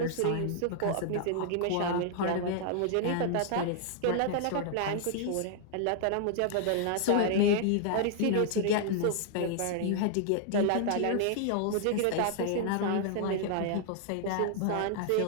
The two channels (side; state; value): both; different; correlation -0.01